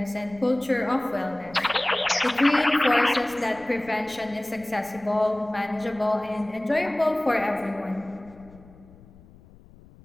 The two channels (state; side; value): noise; left; rumble, 24 dB below the sound